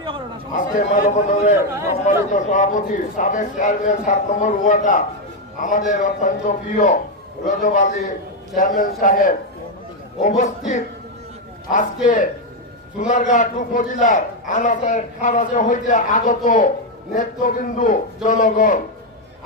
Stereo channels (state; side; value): normal; both; correlation 0.04